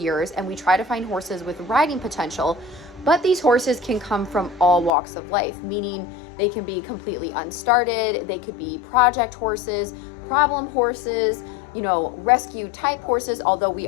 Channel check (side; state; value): right; drops out; at 4.9 s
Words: and we try to find horses with riding potential. But these horses can come from all walks of life, meaning they can be completely unstarted, they could be project horses, problem horses, rescue type horses, although we